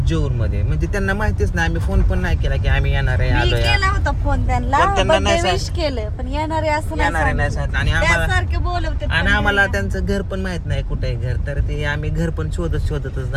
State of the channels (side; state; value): both; identical; correlation 1.00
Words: म्हणजे त्यांना माहितीच नाही, आम्ही फोन पण नाही केला की आम्ही येणार आहे, आलोय. केला होता फोन त्यांना, त्यांना नाही विश केलं, पण येणार आहे असं येणार नाही सांगितलं. आणि आम्हाला सारखे बोलवते आणि आम्हाला त्यांचं घर पण माहित नाही कुठे आहे घर. तर ते आम्ही घर पण शोधतच